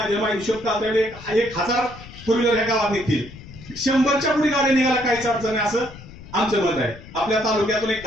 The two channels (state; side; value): noise; left; rumble, 17 dB below the sound